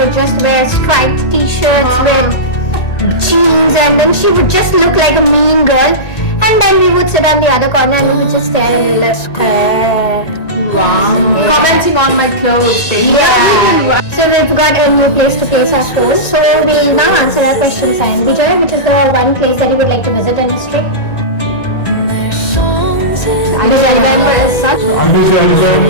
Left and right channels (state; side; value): late; right; 1.9 ms